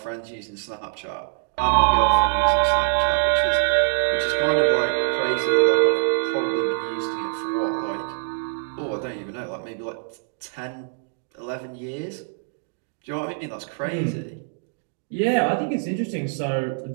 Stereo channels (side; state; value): left; silent; digital silence